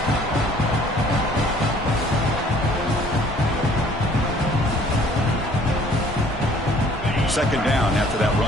Second down after that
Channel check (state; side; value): normal; both; correlation 0.56